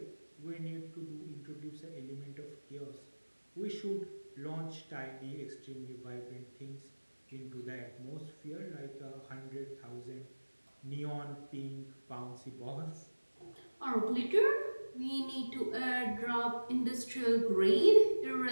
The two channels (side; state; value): both; inverted; correlation -1.00